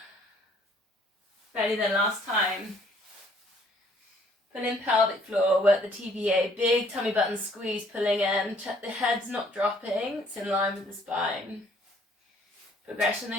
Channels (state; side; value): normal; both; correlation 0.62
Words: Ready then, last time. Pull in pelvic floor, work the TVA, big tummy button squeeze, pulling in. Check the head's not dropping, it's in line with the spine. Progression